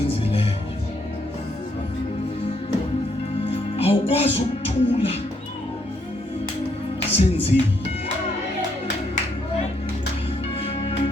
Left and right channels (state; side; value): normal; both; correlation 0.73